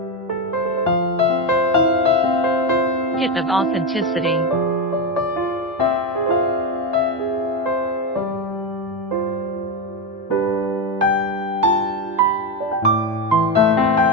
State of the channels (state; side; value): normal; both; correlation 0.12